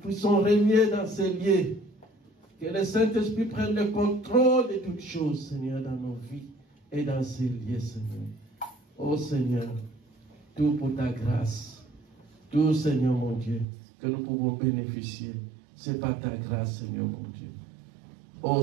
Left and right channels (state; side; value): drops out; left; at 13.7 s